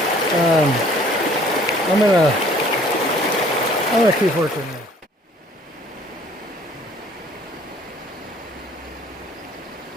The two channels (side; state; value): both; normal; correlation 0.56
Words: I'm gonna keep working there.